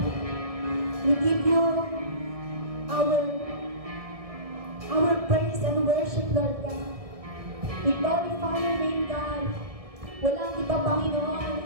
we give you our praise and worship, Lord God. We glorify your name, God. Walang iba, Panginoon,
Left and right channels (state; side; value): late; left; 1.7 ms